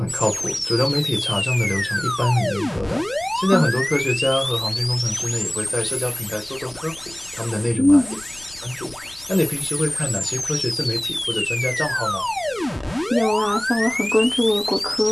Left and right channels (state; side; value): noise; left; rumble, 23 dB below the sound